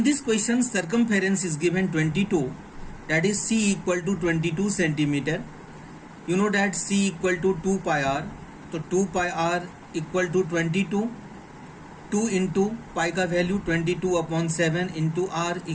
this question circumference is given 22, that is C equal to 22 centimeter. You know that C equal to 2 pi r. So 2 pi r equal to 22. 2 into pi का value 22/7 into r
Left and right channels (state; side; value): identical; both; correlation 1.00